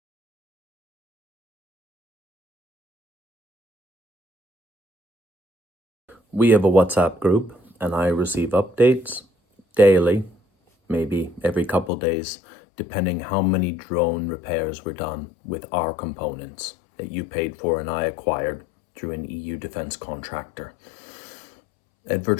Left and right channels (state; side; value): drops out; right; at 11.9 s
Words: We have a WhatsApp group, and I receive updates daily, maybe every couple days, depending how many drone repairs were done with our components that you paid for and I acquired through an EU defense contractor. At